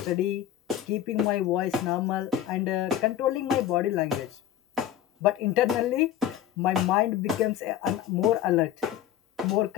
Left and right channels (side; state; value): right; quieter; 11.3 dB